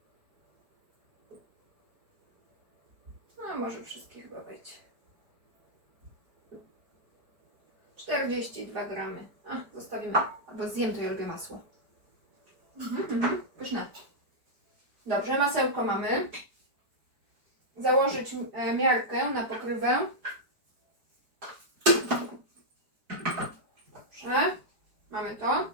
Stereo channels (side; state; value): left; late; 4.8 ms